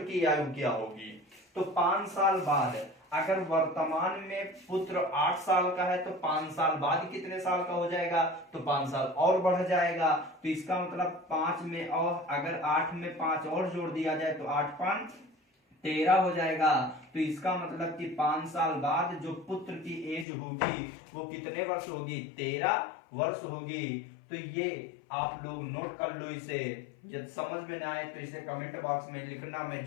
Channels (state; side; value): drops out; right; at 20.2 s